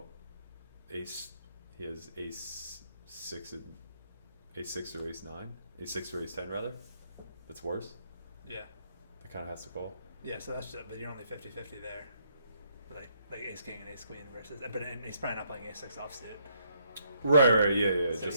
Ace. He has Ace 6 and Ace 6 or Ace 9, Ace 6 or Ace 10 rather. That's worse. Yeah. That kind of has to call. Yeah, so that's just, but you're only 50-50 there. Like Ace King and Ace Queen versus, but and he's probably not playing Ace 6 offsuit. Right, yeah, So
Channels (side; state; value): both; inverted; correlation -0.72